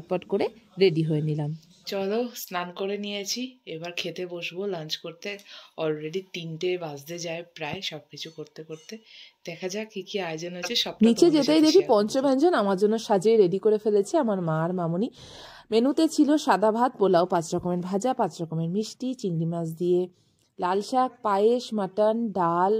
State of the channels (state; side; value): identical; both; correlation 1.00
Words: করে রেডি হয়ে নিলাম। চলো স্নান করে নিয়েছি, এবার খেতে বসবো লাঞ্চ করতে। অলরেডি 3টে বাজতে যায় প্রায়, সবকিছু করতে করতে। দেখা যাক কি কি আয়োজন আছে সব। নিচে যেতেই দেখি পঞ্চব্যঞ্জন আমার জন্য সাজিয়ে রেডি করে ফেলেছে আমার মা আর মামুনি। মেনুতে ছিল সাদা ভাত, পোলাও, 5 রকমের ভাজা, 5 রকমের মিষ্টি, চিংড়ি মাছ দিয়ে লাল শাক, পায়েস, মাটন, ডাল,